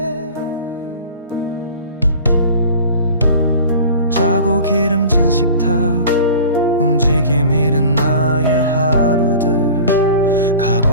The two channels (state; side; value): inverted; both; correlation -0.41